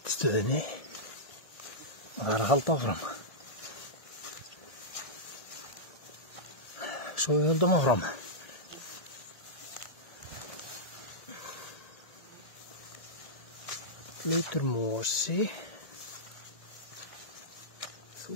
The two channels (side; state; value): right; late; 1.7 ms